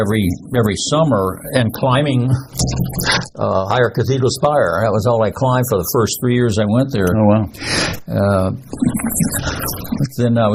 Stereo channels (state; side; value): identical; both; correlation 1.00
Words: summer and climbing Higher Cathedral Spire. That was all I climbed for the first 3 years I went there. Oh, wow. Then I